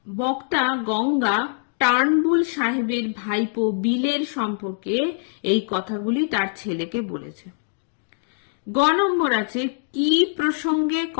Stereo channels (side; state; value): right; silent; digital silence